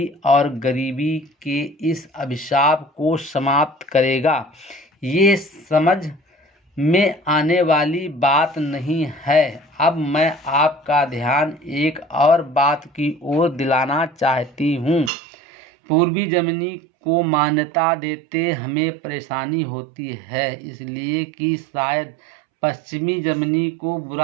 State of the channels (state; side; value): drops out; left; at 15.1 s